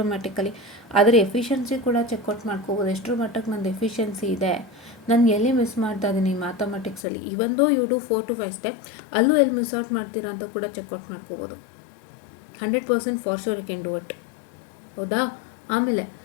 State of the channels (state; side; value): drops out; right; at 7.1 s